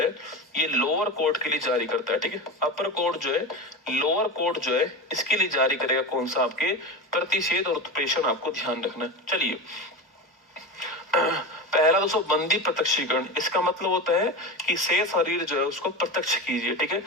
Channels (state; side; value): normal; both; correlation 0.23